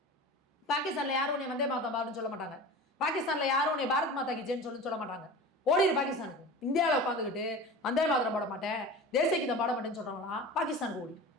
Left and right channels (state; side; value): normal; both; correlation 0.34